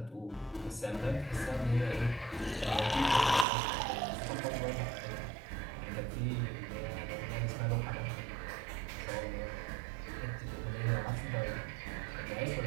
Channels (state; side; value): drops out; left; at 3.5 s